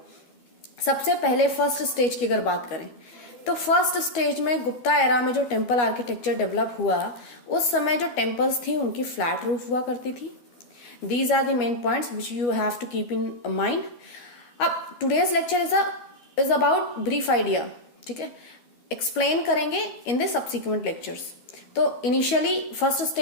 सबसे पहले फर्स्ट स्टेज की अगर बात करें तो फर्स्ट स्टेज में गुप्ता एरा में जो टेम्पल आर्किटेक्चर डेवलप हुआ उस समय जो टेम्पल्स थी उनकी फ्लैट रूफ हुआ करती थी. These are the main points which you have to keep in mind. अब today's lecture is about brief idea. ठीक है, एक्सप्लेन करेंगे इन द सब्सिक्वेंट लेक्चर्स. तो इनिशियली फर्स्ट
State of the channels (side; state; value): right; late; 12 ms